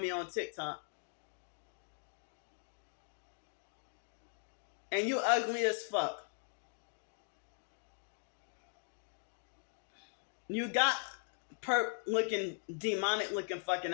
on TikTok? And you ugly as fuck. You got perp looking, demonic looking fucking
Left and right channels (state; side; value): silent; right; digital silence